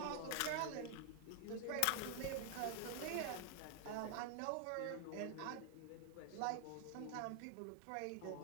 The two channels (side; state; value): both; different; correlation 0.00